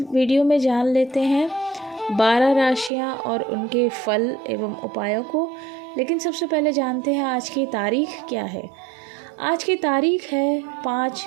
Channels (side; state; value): left; drops out; at 2.9 s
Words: वीडियो में जान लेते हैं 12 राशियां और उनके फल एवं उपायों को। लेकिन सबसे पहले जानते हैं आज की तारीख क्या है। आज की तारीख है 5